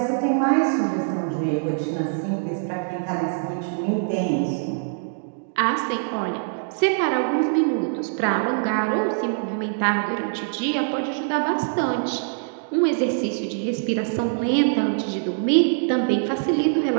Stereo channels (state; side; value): silent; left; digital silence